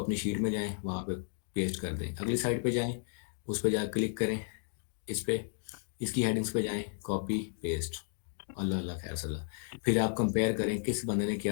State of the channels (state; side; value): silent; right; digital silence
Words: शीट में जाएं, वहाँ पे पेस्ट कर दें, अगली साइड पे जाएं, उस पे जा क्लिक करें, इस पे इसकी हेडिंग्स पे जाएं, कॉपी पेस्ट, अल्लाह अल्लाह खैर सल्ला। फिर आप कंपेयर करें किस बंदे ने